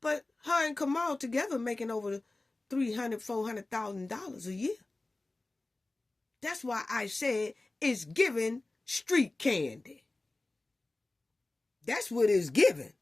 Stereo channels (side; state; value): right; quieter; 3.0 dB